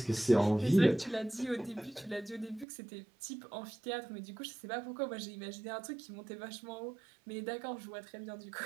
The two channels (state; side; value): drops out; left; at 2.7 s